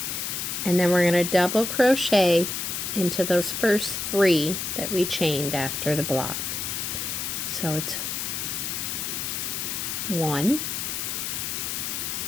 And then we're going to double crochet into those first 3 that we chained after the block. So it's 1,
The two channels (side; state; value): left; noise; hiss, 3 dB below the sound